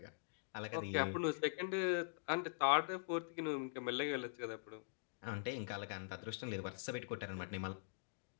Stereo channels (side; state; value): right; silent; digital silence